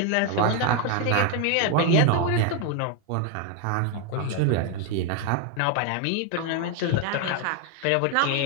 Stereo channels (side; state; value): both; different; correlation 0.01